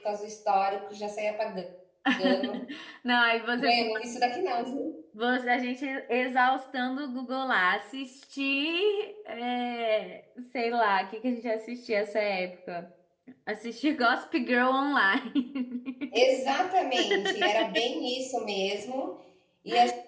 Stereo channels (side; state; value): both; identical; correlation 1.00